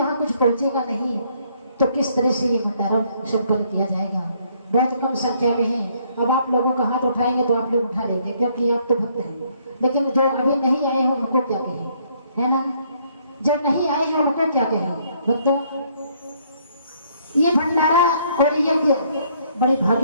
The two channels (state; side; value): inverted; both; correlation -0.67